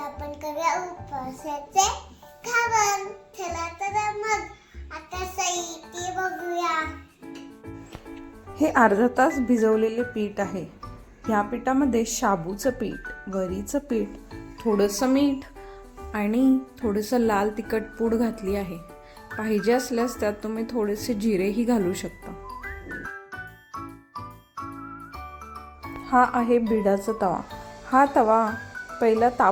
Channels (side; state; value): both; identical; correlation 1.00